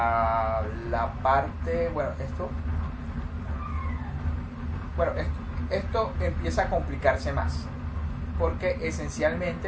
la parte, esto empieza a complicarse más, porque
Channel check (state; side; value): identical; both; correlation 1.00